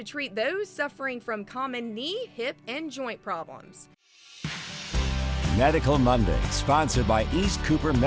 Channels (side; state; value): both; identical; correlation 1.00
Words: treat those suffering from common knee, hip, and joint problems. Medical Monday, sponsored by East Cooper